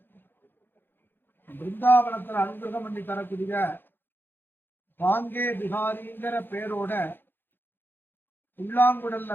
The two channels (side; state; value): right; late; 0.099 ms